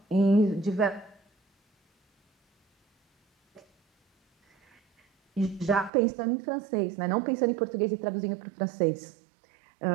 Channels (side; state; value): left; drops out; at 5.9 s